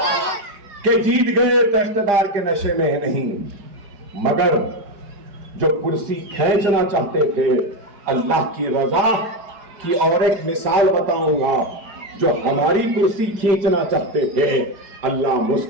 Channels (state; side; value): late; left; 5.0 ms